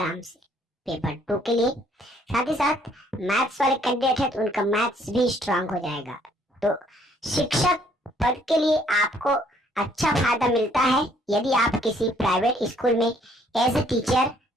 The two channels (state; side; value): normal; both; correlation 0.64